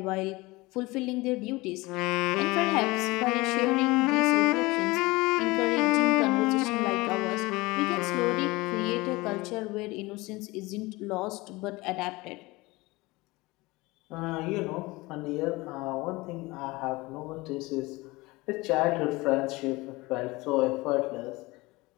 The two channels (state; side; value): quieter; right; 22.1 dB